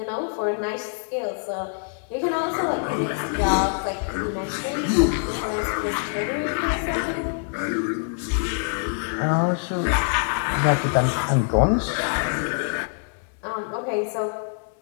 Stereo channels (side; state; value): right; silent; digital silence